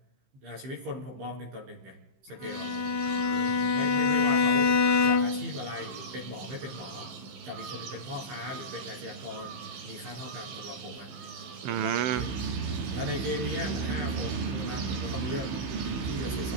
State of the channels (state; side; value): late; left; 15 ms